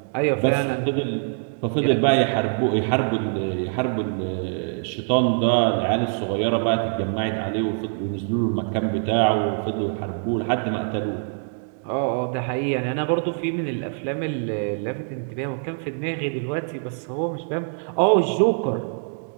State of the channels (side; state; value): left; silent; digital silence